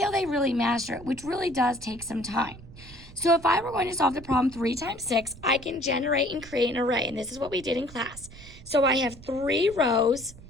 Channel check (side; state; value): right; noise; rumble, 18 dB below the sound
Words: they really master it, which really does take some time. So if I were going to solve the problem 3 times 6, I can generate and create an array, and this is what we did in class. So I have 3 rows